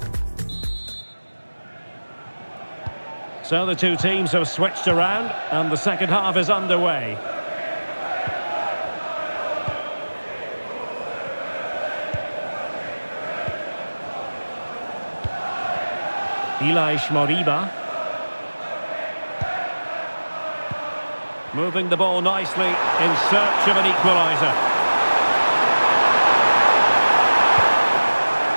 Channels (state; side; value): inverted; both; correlation -1.00